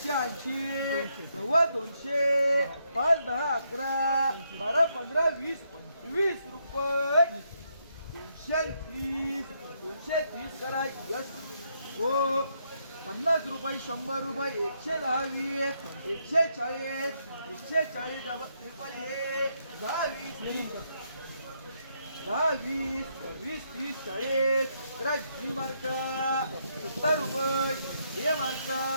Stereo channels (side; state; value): both; inverted; correlation -0.77